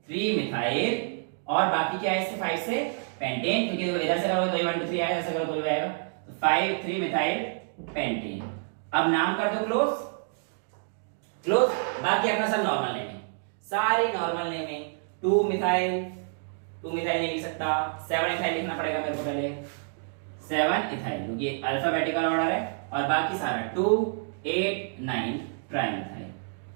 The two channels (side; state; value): left; silent; digital silence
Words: 3 मिथाइल, और बाकी क्या है इससे 5 से पेंटेन, क्योंकि देखो इधर से करोगे तो ये 1 2 3 आएगा, ऐसे करो तो ये आएगा, तो 5 3 मिथाइल पेंटेन। अब नाम कर दो क्लोज क्लोज, बाकी अपना सब नॉर्मल नेमिंग, सारी नॉर्मल नेमिंग। 2 मिथाइल नहीं लिख सकता, 7 इथाइल लिखना पड़ेगा मेरे को पहले, 7 इथाइल, क्योंकि ये अल्फाबेटिकल ऑर्डर है, और बाकी सारा 2 8 9 ट्राई मिथाइल।